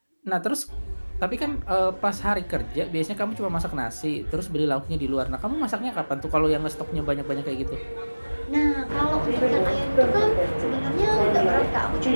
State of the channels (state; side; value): inverted; both; correlation -1.00